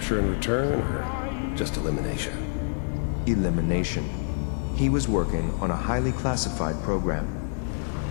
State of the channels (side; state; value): right; silent; digital silence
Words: and return, or just elimination? Elimination. He was working on a highly classified program.